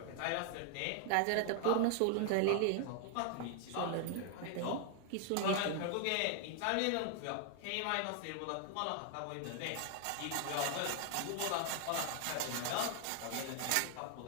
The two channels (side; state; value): both; different; correlation 0.00